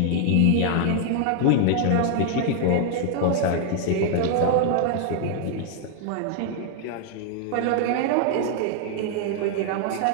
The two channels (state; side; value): different; both; correlation 0.00